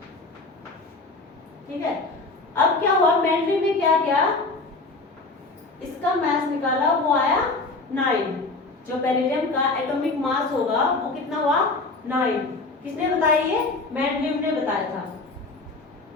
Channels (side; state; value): right; quieter; 3.5 dB